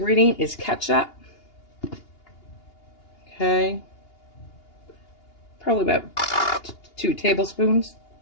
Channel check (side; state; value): right; late; 2.8 ms